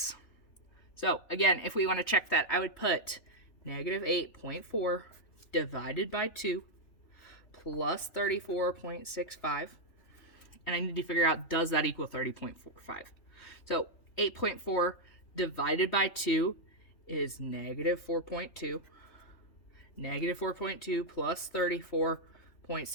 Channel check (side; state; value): right; late; 3.4 ms